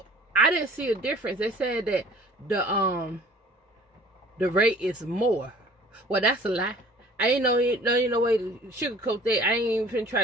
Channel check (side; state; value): both; normal; correlation 0.50